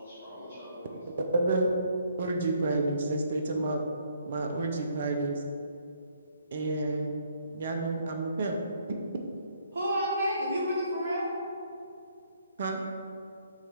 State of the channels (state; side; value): inverted; both; correlation -0.68